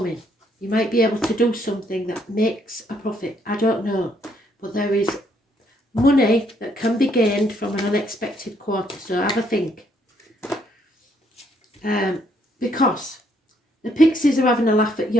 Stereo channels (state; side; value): normal; both; correlation 0.70